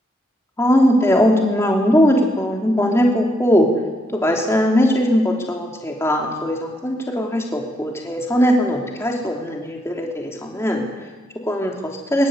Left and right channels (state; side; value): normal; both; correlation 0.78